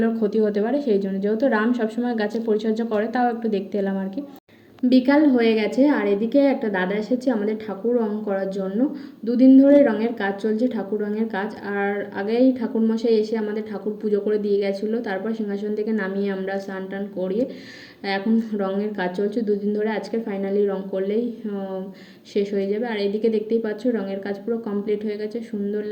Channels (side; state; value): both; identical; correlation 1.00